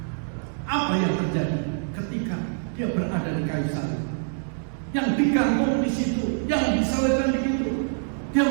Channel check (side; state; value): left; silent; digital silence